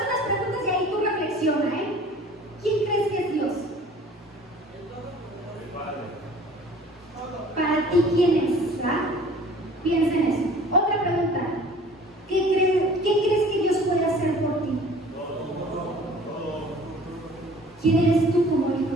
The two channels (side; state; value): both; normal; correlation 0.48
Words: unas preguntas y ahí tú reflexiona, ¿eh? ¿Quién crees que es Dios? Para ti, ¿quién es? ¿Verdad? Piensa en eso. Otra pregunta. ¿Qué crees que Dios puede hacer por ti? ¿Quién eres tú como hijo